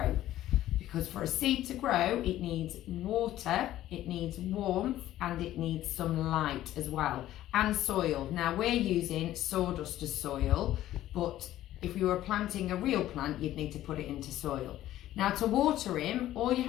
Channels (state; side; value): quieter; right; 13.7 dB